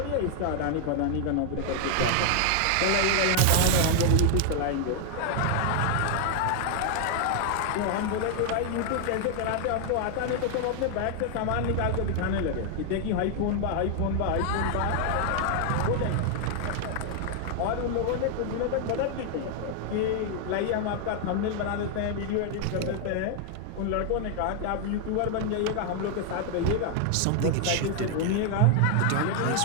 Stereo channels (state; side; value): different; both; correlation 0.00